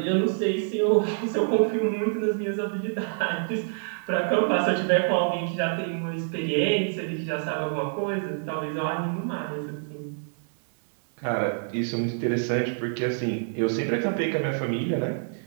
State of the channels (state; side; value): silent; left; 57 dB below the other